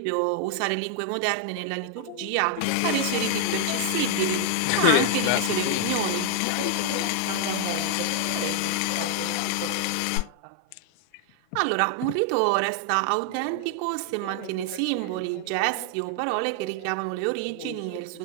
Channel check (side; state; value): both; different; correlation 0.00